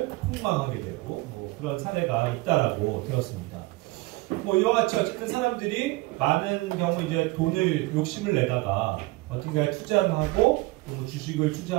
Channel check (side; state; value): left; quieter; 21.8 dB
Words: 폭망하게 되고 그런 사례가 있다라고 들었습니다. 이와 같이 어쨌든 사람들이 많은 경우 이제 돈을 욕심을 내다가 어딘가에 투자를 하고 주식을